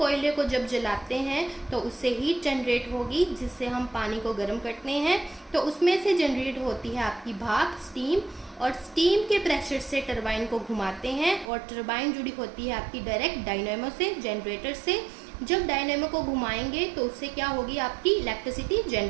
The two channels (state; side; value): drops out; left; at 11.5 s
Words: को जब जलाते हैं तो उससे हीट जनरेट होगी, जिससे हम पानी को गर्म करते हैं। तो उसमें से जनरेट होती है आपकी भाप, स्टीम, और स्टीम के प्रेशर से टरबाइन को घुमाते हैं, और टरबाइन जुड़ी होती है आपकी डायरेक्ट डायनेमो से, जनरेटर से। जब डायनेमो को घुमाएंगे तो उससे क्या होगी, आपकी इलेक्ट्रिसिटी